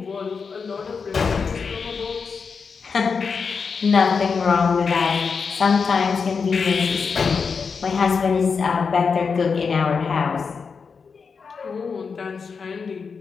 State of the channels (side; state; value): right; quieter; 5.4 dB